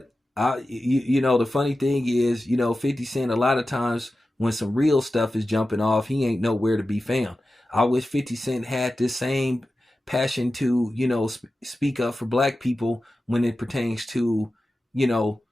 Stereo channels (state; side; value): normal; both; correlation 0.93